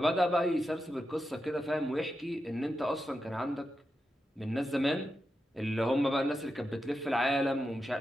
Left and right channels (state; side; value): normal; both; correlation 0.88